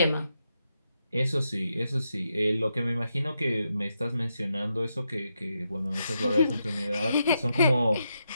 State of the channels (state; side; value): inverted; both; correlation -0.83